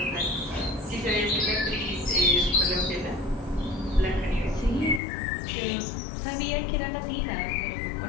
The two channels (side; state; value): right; drops out; at 5.0 s